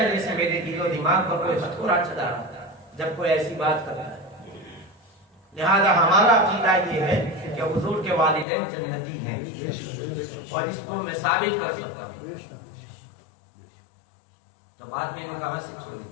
جیسے میرے دل و دماغ پر کوئی ہتھوڑا چلا رہا ہے جب کوئی ایسی بات کرتا ہے۔ لہذا ہمارا عقیدہ یہ ہے کہ حضور کے والدین جنتی ہیں، اور اس کو میں ثابت کر سکتا ہوں۔ تو بات میں نے کہاں سے چھوڑی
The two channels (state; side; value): drops out; right; at 8.5 s